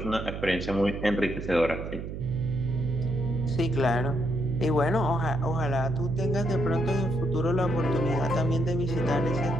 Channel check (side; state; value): right; noise; hum, 7 dB below the sound